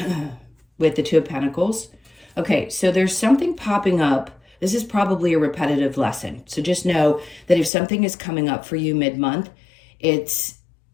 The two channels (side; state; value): right; drops out; at 7.7 s